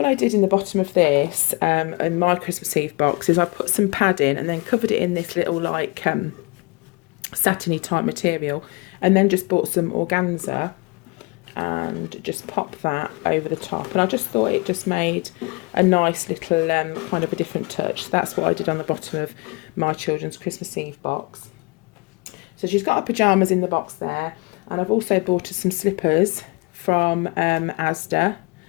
I did in the bottom of this, in my Christmas Eve box, is I put some padding and then covered it in this little, like, satiny type material, and then just bought some organza and just popped that over the top. And I just thought it just made a nice little kind of a different touch. So that's what I did on the bottom of my children's Christmas Eve box. So she's got her pyjamas in the box there, and I've also bought her some slippers from Asda.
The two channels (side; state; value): right; quieter; 27.6 dB